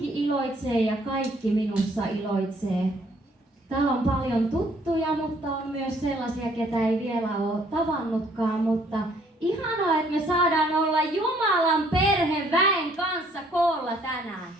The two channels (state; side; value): normal; both; correlation 0.63